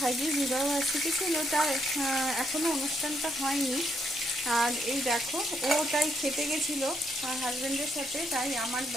বিবাহ বার্ষিকী ছিল, তার এখনও অনুষ্ঠানটা হয়নি। আর এই দেখো ও তাই খেতে গেছিলো হাজব্যান্ডের সাথে, তাই আমার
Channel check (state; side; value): normal; both; correlation 0.75